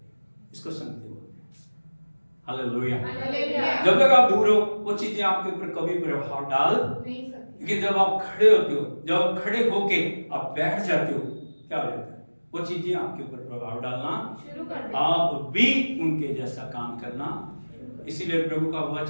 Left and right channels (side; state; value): both; inverted; correlation -1.00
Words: इसको संगति बोलते हैं। हालेलुया। जब तक आप दूर हो, वो चीजें आपके ऊपर कभी प्रभाव डाल नहीं सकती। लेकिन जब आप खड़े होते हो, जब आप खड़े होके आप बैठ जाते हो, क्या हो जाता है? वो चीजें आपके ऊपर प्रभाव डालना शुरू कर दिया। आप भी उनके जैसा काम करना। इसीलिए प्रभु का